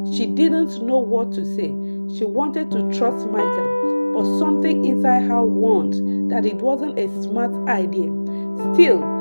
She didn't know what to say. She wanted to trust Michael, but something inside her warned that it wasn't a smart idea. Still,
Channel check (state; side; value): inverted; both; correlation -1.00